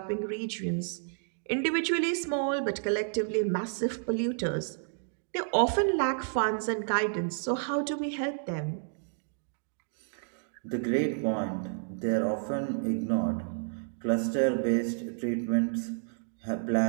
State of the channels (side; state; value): left; silent; digital silence